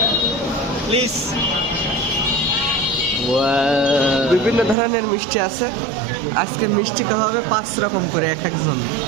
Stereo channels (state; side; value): drops out; left; at 4.8 s